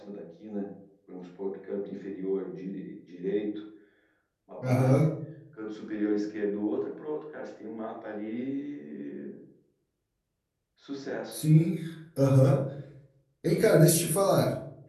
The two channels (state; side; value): identical; both; correlation 1.00